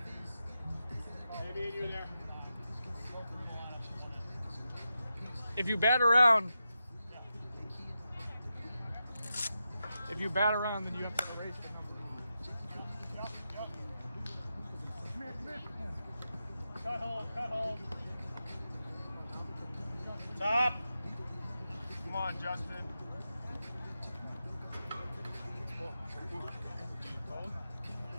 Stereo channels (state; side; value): inverted; both; correlation -0.89